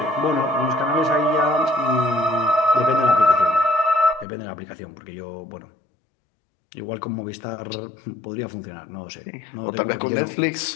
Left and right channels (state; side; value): drops out; right; at 4.2 s